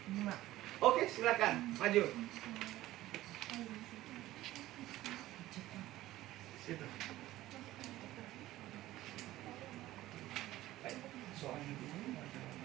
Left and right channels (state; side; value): quieter; left; 15.8 dB